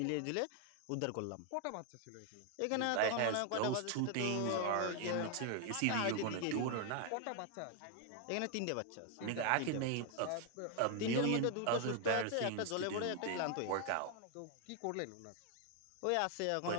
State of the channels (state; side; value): different; both; correlation 0.01